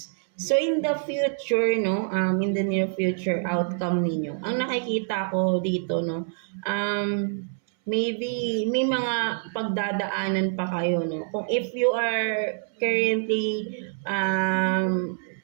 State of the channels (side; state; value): left; silent; 61 dB below the other